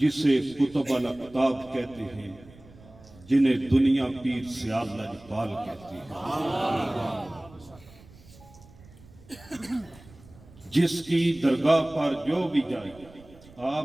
کتب الاقطاب کہتے ہیں، جنہیں دنیا پیر سیال لجپال کہتی ہے، جس کی درگاہ پر جو بھی جائے،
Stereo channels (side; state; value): right; noise; rumble, 23 dB below the sound